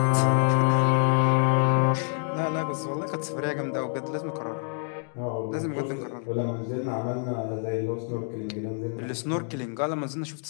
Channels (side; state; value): right; silent; 60 dB below the other